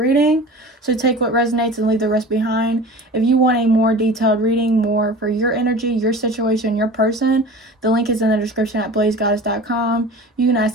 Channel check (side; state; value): both; normal; correlation 0.38